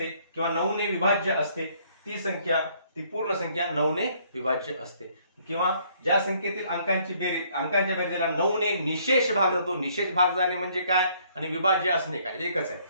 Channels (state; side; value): inverted; both; correlation -0.64